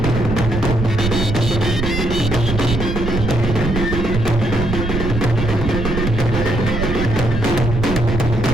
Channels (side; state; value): right; noise; rumble, 3 dB below the sound